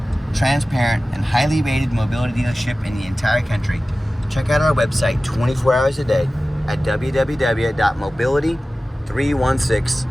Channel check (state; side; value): normal; both; correlation 0.96